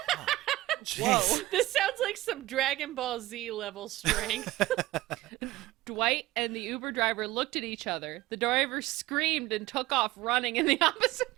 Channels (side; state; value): left; quieter; 17.5 dB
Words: Jeez. This sounds like some Dragon Ball Z level strength. Dwight and the Uber driver looked at each other. The driver screamed and took off running in the opposite